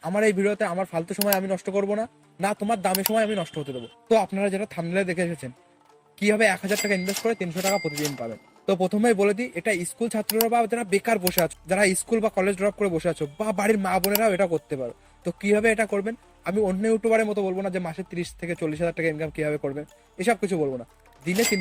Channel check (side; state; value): both; identical; correlation 1.00